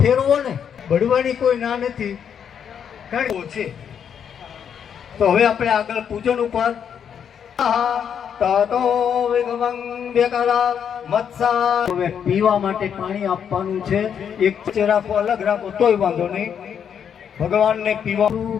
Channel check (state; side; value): quieter; right; 8.0 dB